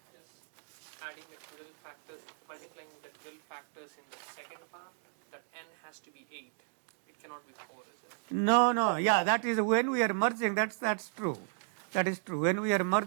just adding the twiddle factors, multiplying the twiddle factors in the second part, that n has to be 8. It cannot be 4, is it? No. Yeah, that is when we are merging. That's true. That is true. When we are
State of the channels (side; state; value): left; silent; digital silence